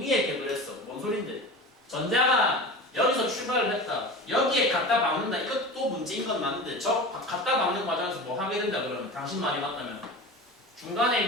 격을 했어. 뭔 소린데? 전자가 여기서 출발을 했다. 여기에 갖다 박는다. 이것도 문제인 건 맞는데 저 갖다 박는 과정에서 뭐 하게 된다 그러면 당신 말이 맞다면 중간에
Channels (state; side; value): normal; both; correlation 0.32